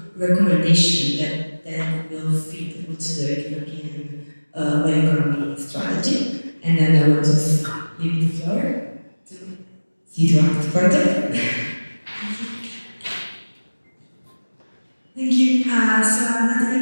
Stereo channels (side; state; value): both; inverted; correlation -1.00